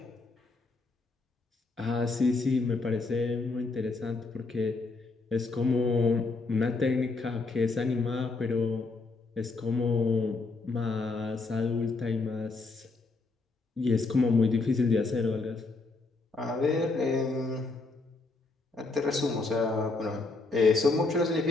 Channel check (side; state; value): right; quieter; 3.7 dB